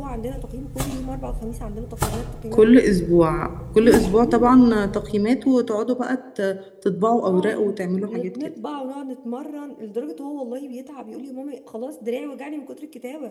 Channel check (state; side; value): identical; both; correlation 1.00